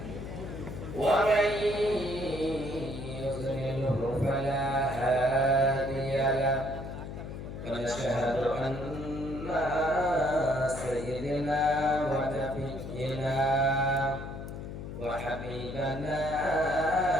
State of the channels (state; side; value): noise; left; hum, 9 dB below the sound